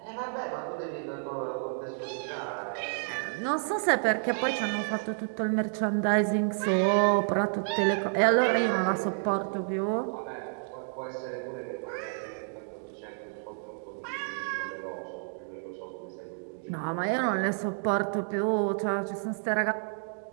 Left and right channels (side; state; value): left; silent; digital silence